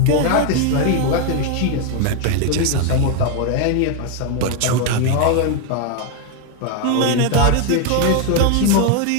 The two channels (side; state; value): both; different; correlation 0.01